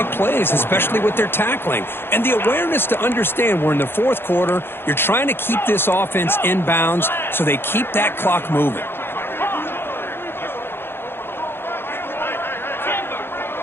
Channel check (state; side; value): late; right; 0.11 ms